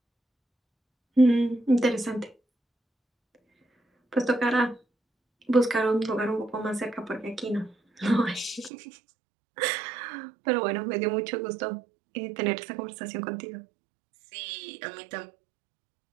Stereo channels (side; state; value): left; drops out; at 8.7 s